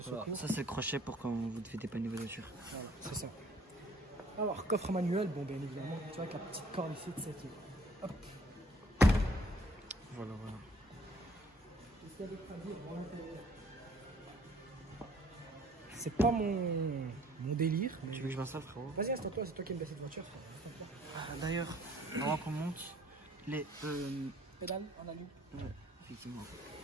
secours. Voilà, ça c'est le crochet pour quand vous devez dépanner vos voitures. Voilà, c'est ça. Alors, coffre manuel, bon, bien évidemment, tu vois, avec la petite corde ici de cette. Hop. Voilà. Qu'est-ce qu'il y a d'autre à dire pour l'intérieur? C'est pas mon délire. Tu veux que je vois ça, frérot? Vas-y, installe-toi, c'est toi qui aimes bien cette voiture. D'ailleurs, avant qu'on monte, les pédales en alu. Ouais, effectivement.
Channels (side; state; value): both; normal; correlation 0.57